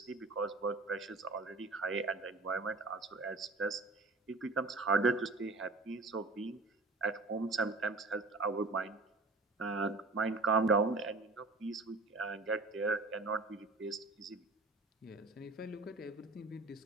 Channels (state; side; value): quieter; left; 3.4 dB